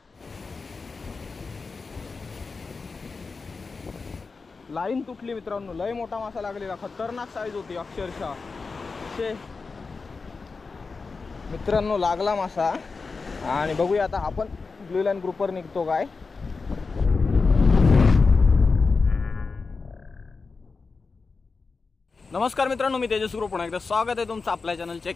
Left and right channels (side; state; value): right; quieter; 4.4 dB